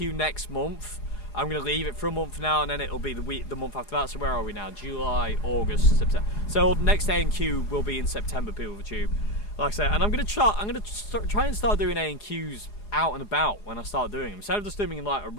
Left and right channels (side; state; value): right; late; 4.8 ms